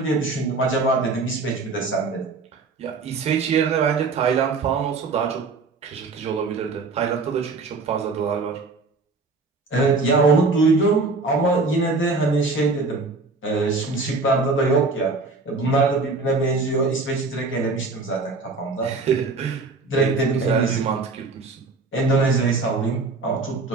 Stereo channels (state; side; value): quieter; left; 3.8 dB